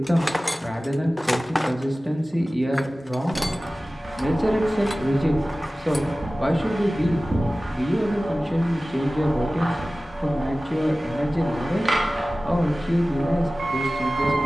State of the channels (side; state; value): both; normal; correlation 0.97